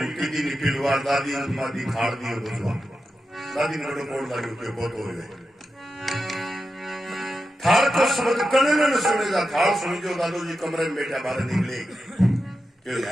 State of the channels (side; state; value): both; normal; correlation 0.90